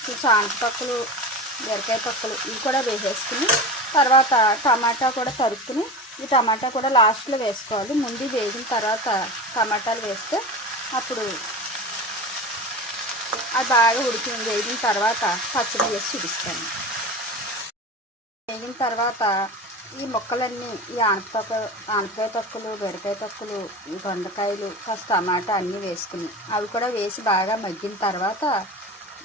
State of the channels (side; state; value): both; normal; correlation 0.29